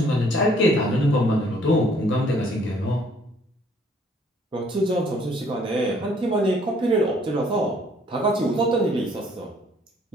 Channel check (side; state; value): both; normal; correlation 0.61